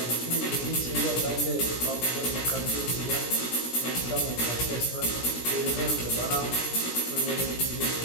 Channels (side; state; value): right; late; 17 ms